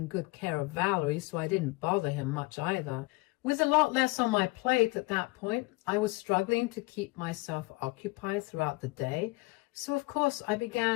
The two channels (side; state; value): right; quieter; 23.7 dB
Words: good care of Valerie, so I didn't bother him much either. With a lot less on my plate at that point, I was struggling to keep myself occupied throughout the day, so of course I